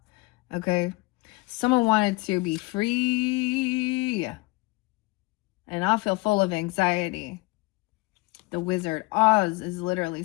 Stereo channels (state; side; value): quieter; right; 23.5 dB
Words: Okay. Someone wanted to be free. And I feel full of anxiety. The Wizard. Oz is literally